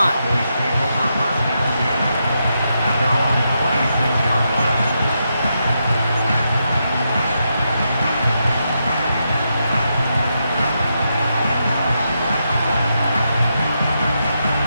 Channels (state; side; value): inverted; both; correlation -0.83